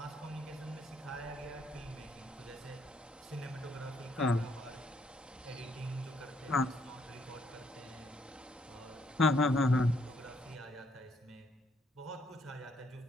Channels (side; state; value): both; normal; correlation 0.71